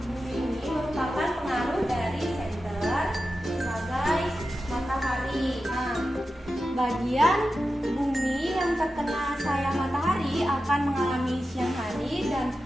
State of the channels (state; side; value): normal; both; correlation 0.92